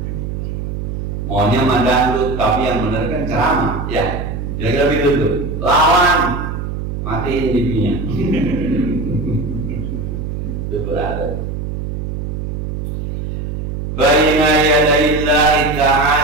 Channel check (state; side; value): noise; right; hum, 4 dB below the sound